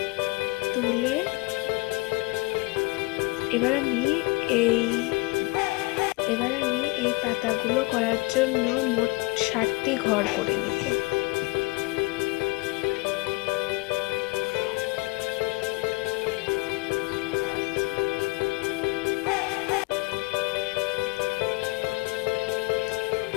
তুলে এবার আমি এই পাতাগুলো করার জন্য মোট 60টি ঘর করে নিব।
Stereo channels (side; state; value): right; quieter; 25.0 dB